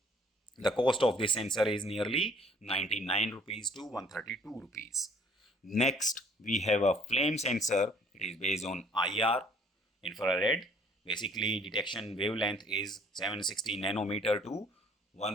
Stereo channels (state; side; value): normal; both; correlation 0.58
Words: The cost of this sensor is nearly 99 rupees to 132 rupees. Next, we have a flame sensor. It is based on IR, infrared. Basically, detection wavelength is 760 nanometer to